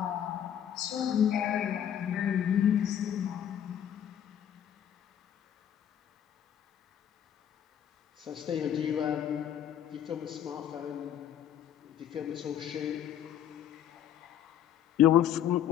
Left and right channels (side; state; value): right; quieter; 10.0 dB